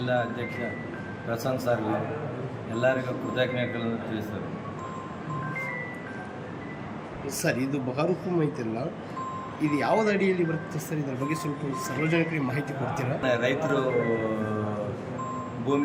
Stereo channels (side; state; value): both; identical; correlation 1.00